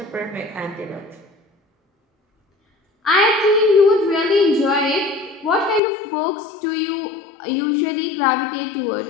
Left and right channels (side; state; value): right; drops out; at 5.8 s